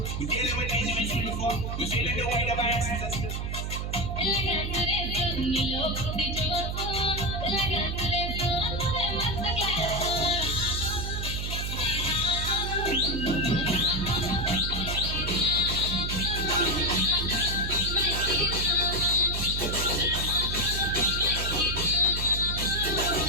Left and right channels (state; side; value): noise; right; hum, 3 dB below the sound